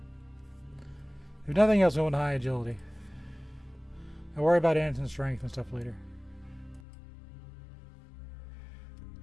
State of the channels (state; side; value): drops out; right; at 6.8 s